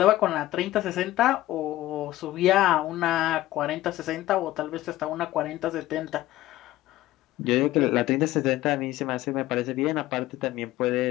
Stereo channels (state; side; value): quieter; right; 15.8 dB